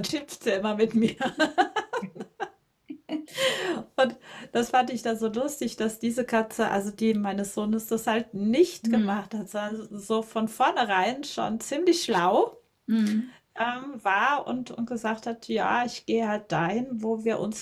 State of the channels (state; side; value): identical; both; correlation 1.00